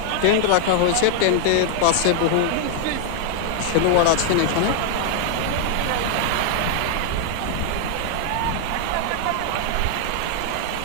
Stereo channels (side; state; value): both; different; correlation 0.00